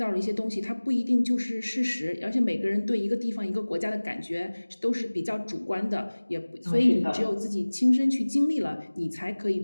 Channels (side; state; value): both; inverted; correlation -1.00